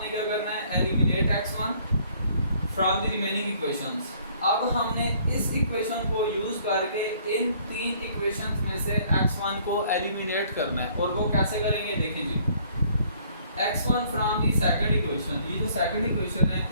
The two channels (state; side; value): inverted; both; correlation -0.60